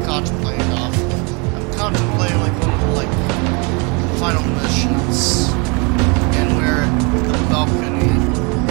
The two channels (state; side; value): quieter; left; 31.3 dB